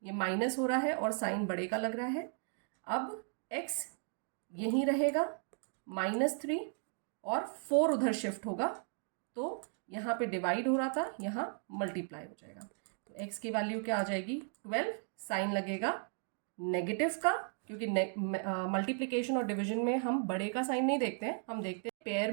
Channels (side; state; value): left; silent; 54 dB below the other